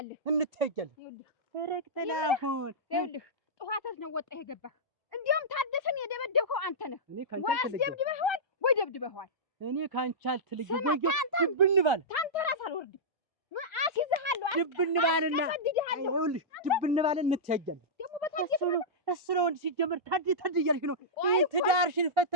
እንተያያለን። ረክተላሁን ይኸውልህ ጠዋት ነው ወጣህ የገባህ። እንዲያውም ታደሰን የደበደብከው አንተ ነህ። ወይ አስደብድበኸዋል ወይ ደብድበኸዋል። እኔ ካንቺ አልተለየም። ወይ ድብን ባል ታንተ ራስ አልወርድም። አስይዝሃለሁ ድብን ባልና ይኸውልሽ ድብን ባል እንተያያለን። ደግሞ በታደሰ እሱ ነው እንደ ሲጀመር ታዲ እያልሽ ነው። ትዳርሽን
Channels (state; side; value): normal; both; correlation -0.13